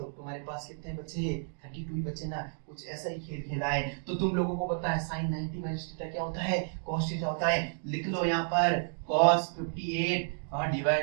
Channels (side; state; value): left; silent; digital silence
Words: तुम्हारे पास कितने बचे? 32 ही बचे ना। कुछ ऐसा ही खेल खेला है। तो तुम लोगों को पता है साइन 90 माइनस थीटा क्या होता है? cos थीटा होता है। लिख लो यहाँ पर cos 58 और